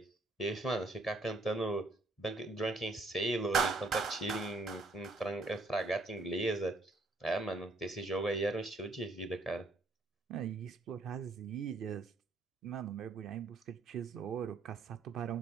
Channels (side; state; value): left; quieter; 3.1 dB